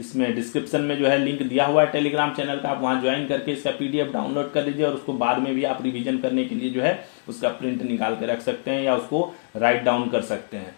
डिस्क्रिप्शन में जो है लिंक दिया हुआ है टेलीग्राम चैनल का, आप वहां ज्वाइन करके इसका PDF डाउनलोड कर लीजिए और उसको बाद में भी आप रिवीजन करने के लिए जो है उसका प्रिंट निकाल के रख सकते हैं या उसको राइट डाउन कर सकते हैं।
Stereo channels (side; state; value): right; silent; digital silence